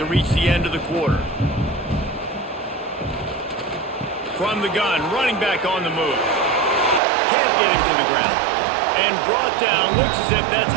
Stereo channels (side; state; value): left; drops out; at 7.0 s